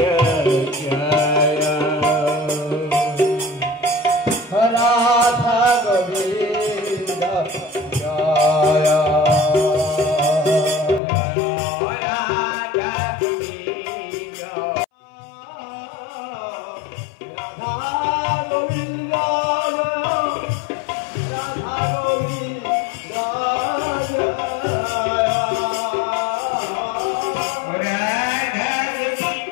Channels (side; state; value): right; drops out; at 11.0 s